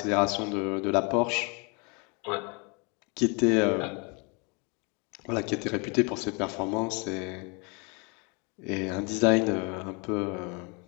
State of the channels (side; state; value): right; quieter; 32.1 dB